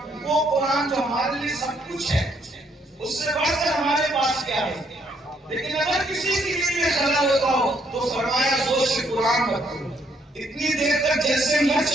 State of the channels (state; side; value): normal; both; correlation 0.70